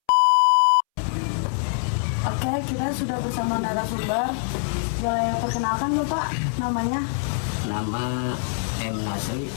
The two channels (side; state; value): right; silent; 63 dB below the other